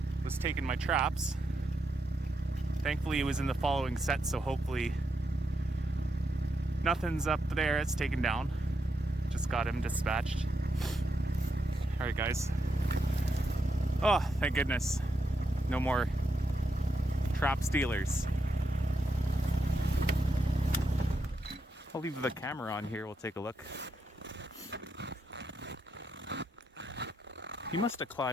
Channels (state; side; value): normal; both; correlation 0.82